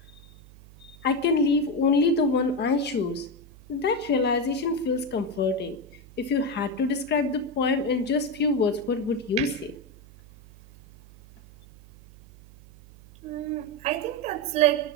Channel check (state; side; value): noise; right; hum, 22 dB below the sound